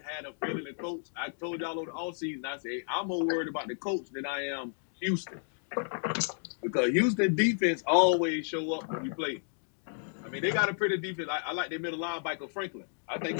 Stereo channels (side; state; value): right; silent; digital silence